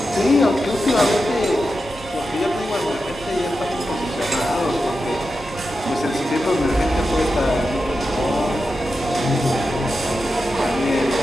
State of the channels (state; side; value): normal; both; correlation 0.90